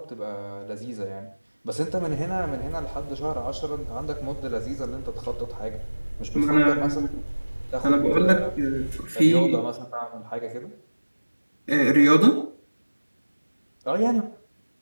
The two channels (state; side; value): inverted; both; correlation -1.00